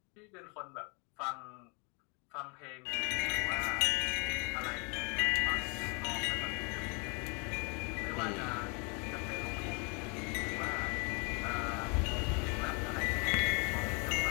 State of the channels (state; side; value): quieter; right; 34.0 dB